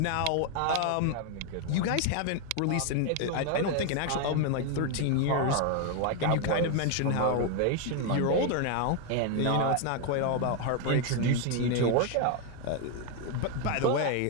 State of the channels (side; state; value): both; different; correlation 0.01